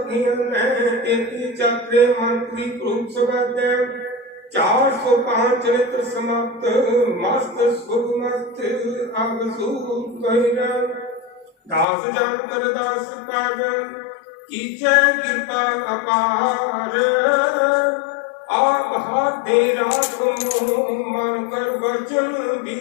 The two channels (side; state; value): right; drops out; at 11.9 s